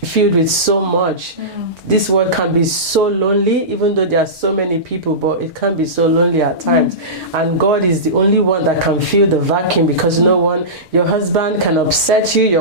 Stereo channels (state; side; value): late; left; 2.6 ms